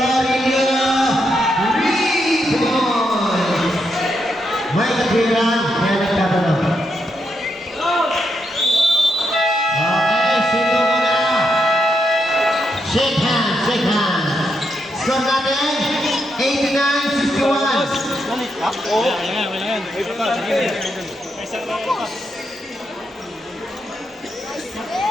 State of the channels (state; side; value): normal; both; correlation 0.81